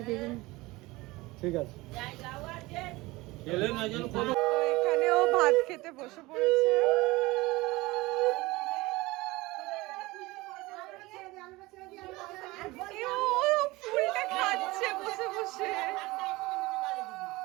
ঠিক আছে। এখানে ও ভাত খেতে বসে পড়েছে। ও ফুলটা খাচ্ছে বসে বসে।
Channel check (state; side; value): quieter; left; 21.1 dB